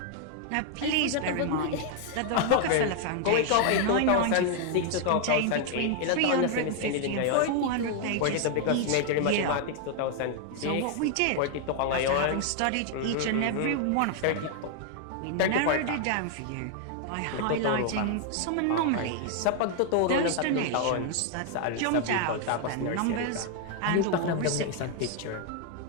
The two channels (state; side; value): different; both; correlation 0.00